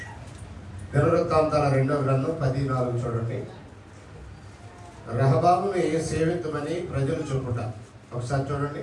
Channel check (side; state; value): both; identical; correlation 1.00